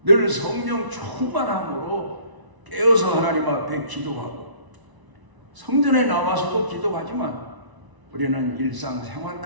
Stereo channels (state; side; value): late; left; 1.0 ms